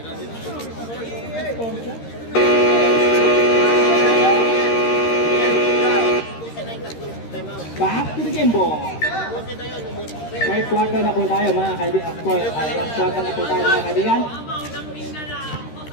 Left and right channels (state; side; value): late; right; 13 ms